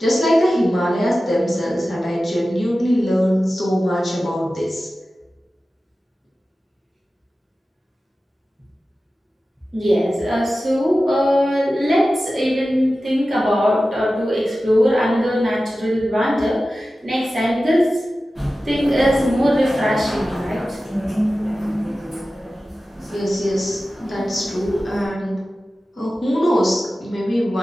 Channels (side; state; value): both; normal; correlation 0.95